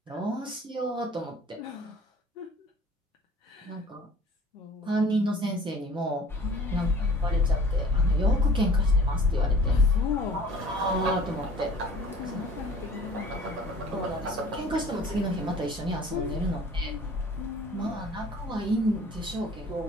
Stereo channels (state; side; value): normal; both; correlation 0.48